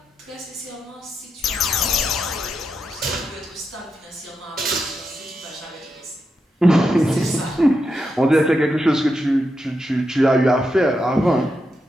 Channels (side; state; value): both; normal; correlation 0.85